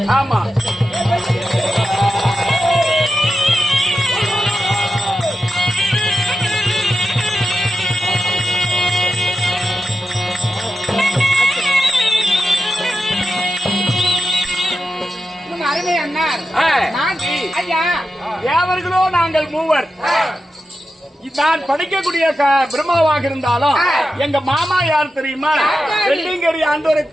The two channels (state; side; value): normal; both; correlation 0.90